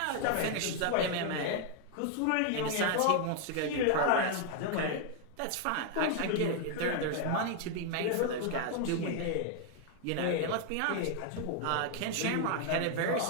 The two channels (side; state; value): both; different; correlation 0.00